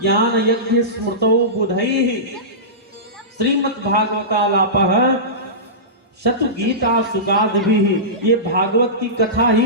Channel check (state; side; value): normal; both; correlation -0.20